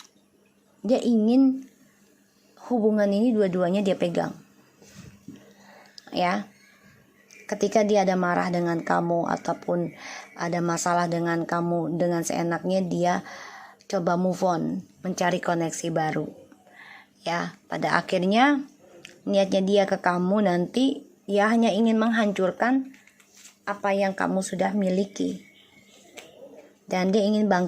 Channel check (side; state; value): both; identical; correlation 1.00